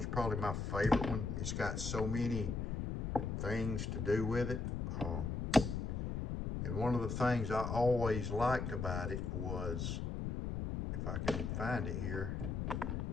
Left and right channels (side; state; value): left; noise; rumble, 2 dB below the sound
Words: probably my favorite one. It's got so many things to do with it. And one of the things I always liked about it was, if I can find it here,